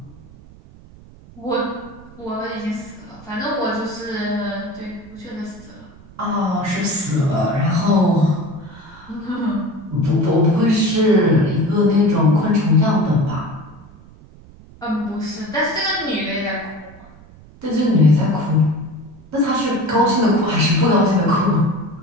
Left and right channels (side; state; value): right; noise; rumble, 22 dB below the sound